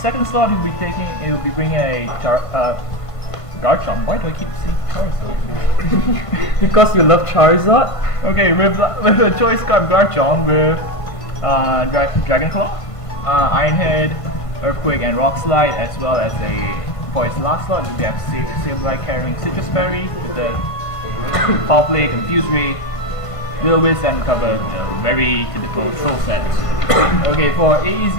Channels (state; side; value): late; right; 1.5 ms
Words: slot, he'll be bringing a Garchomp. Why do I keep saying Charizard? Because you love Charizard? Okay, with a choice card Garchomp with Dragon Claw, Iron Head, Earthquake, and Rock Slide, as well as for his last slot, we have Sableye carrying Citrus Berry with the Foul Play, Confuse Ray, Will-O-Wisp, and cover the very typical troll sets. Okay, for